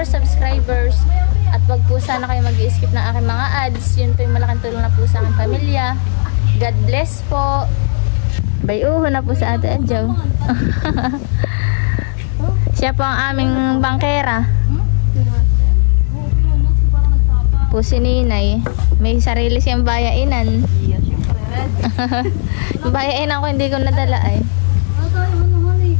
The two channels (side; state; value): right; silent; 59 dB below the other